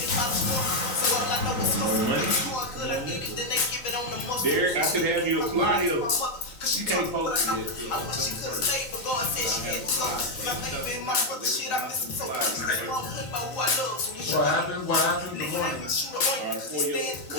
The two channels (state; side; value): late; right; 4.4 ms